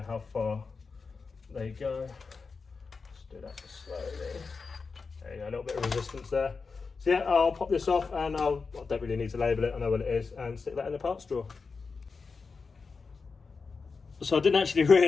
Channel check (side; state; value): right; quieter; 4.7 dB